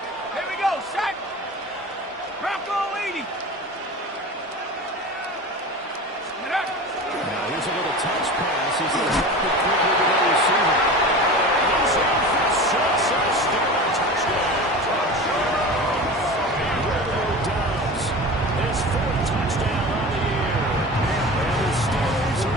Here we go, set. Bronco 80. Now here's a little touch pass as they drop it quickly to the receiver. He's in for 6 and a Steeler touchdown. Dobbs, his 4th touchdown on the year. And the Steelers are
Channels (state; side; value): normal; both; correlation 0.33